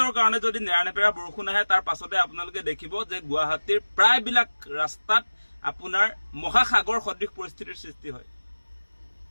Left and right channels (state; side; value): inverted; both; correlation -1.00